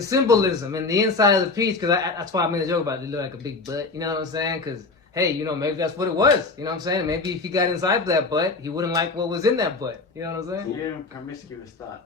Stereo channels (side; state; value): right; quieter; 3.8 dB